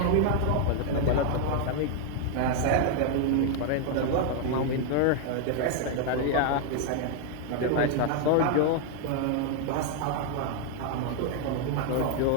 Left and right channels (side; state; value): both; different; correlation 0.00